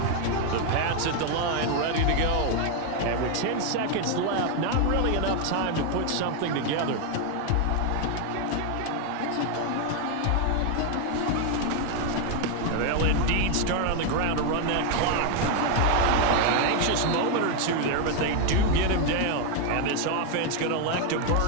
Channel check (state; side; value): different; both; correlation 0.01